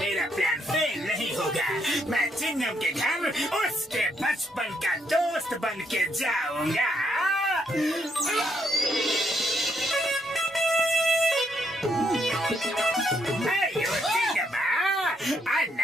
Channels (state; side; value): normal; both; correlation 0.75